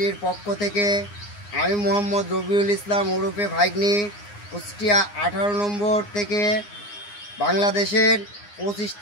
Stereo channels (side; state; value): right; late; 9.7 ms